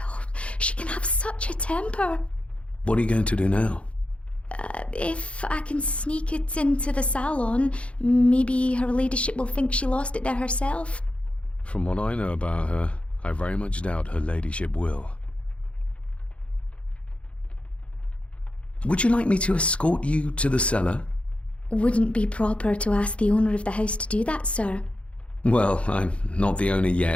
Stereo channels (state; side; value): late; right; 0.061 ms